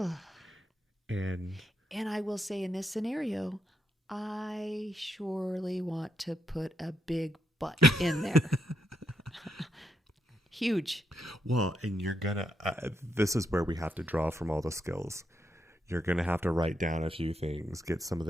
And I will say in this scenario, I surely want to put a big but in there. Huge. Well, and you're going to, this is where we have to draw from all the skills. You're going to have to write down a few things, get some of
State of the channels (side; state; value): both; normal; correlation 0.80